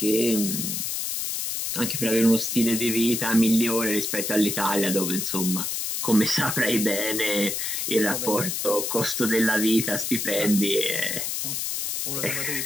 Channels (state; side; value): noise; left; hiss, 2 dB below the sound